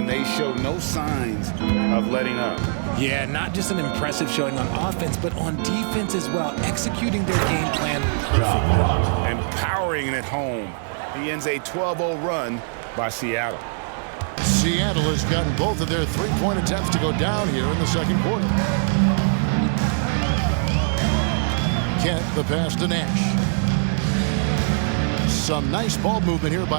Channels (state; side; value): silent; left; digital silence